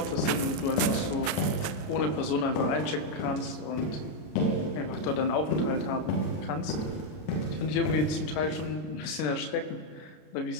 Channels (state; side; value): late; right; 33 ms